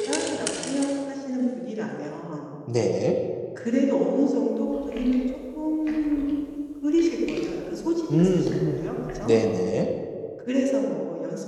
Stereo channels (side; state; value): both; identical; correlation 1.00